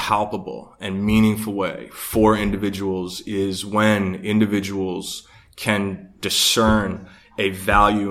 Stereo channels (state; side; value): identical; both; correlation 1.00